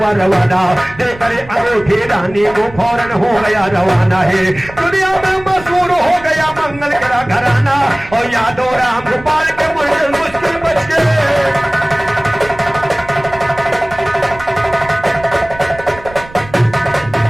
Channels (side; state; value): right; noise; rumble, 18 dB below the sound